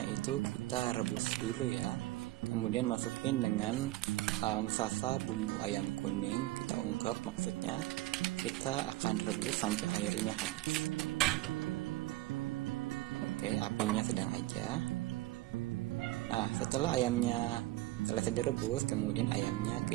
itu kita rebus dulu ya. Kemudian masukin dengan sasa bumbu ayam kuning, kita ungkep maksudnya. Kita akan rebus sampai airnya habis. Oke, apinya sedang aja. Nah, setelah ayamnya selesai direbus, kemudian ayamnya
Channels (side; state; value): left; quieter; 17.7 dB